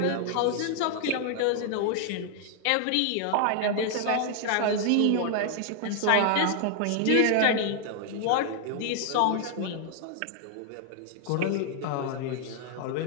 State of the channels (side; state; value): both; different; correlation 0.00